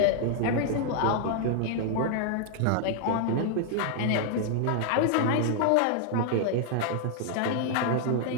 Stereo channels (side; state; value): both; different; correlation 0.00